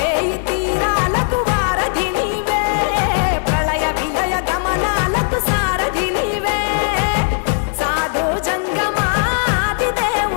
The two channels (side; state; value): right; silent; 64 dB below the other